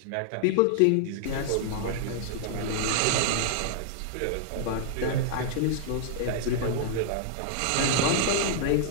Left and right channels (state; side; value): different; both; correlation -0.01